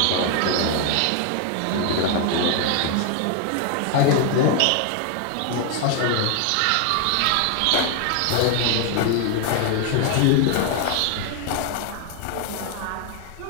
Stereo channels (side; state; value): both; different; correlation 0.01